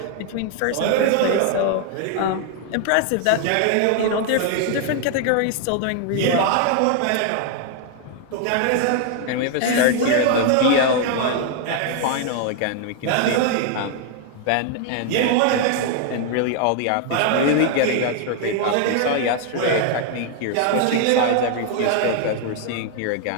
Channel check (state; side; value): different; both; correlation 0.00